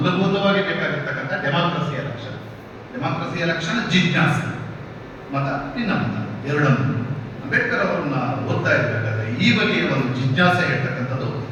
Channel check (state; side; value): identical; both; correlation 1.00